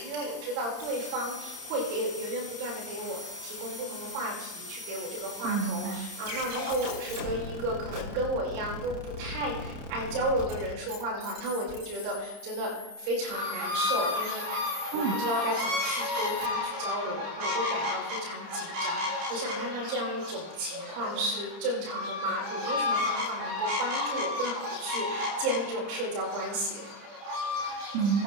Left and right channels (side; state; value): left; late; 30 ms